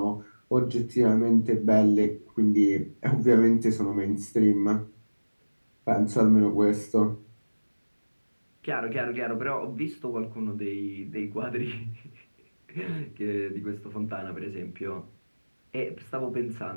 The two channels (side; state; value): both; inverted; correlation -1.00